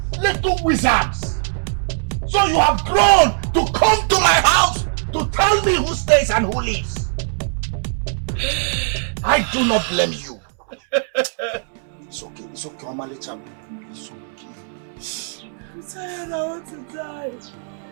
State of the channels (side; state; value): left; silent; 65 dB below the other